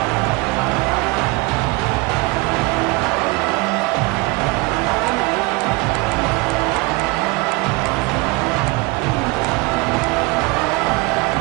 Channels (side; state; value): left; quieter; 25.2 dB